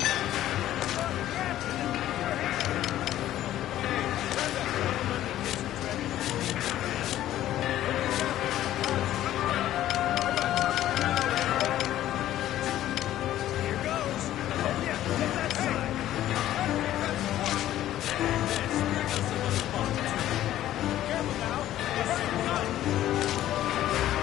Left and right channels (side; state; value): right; quieter; 13.1 dB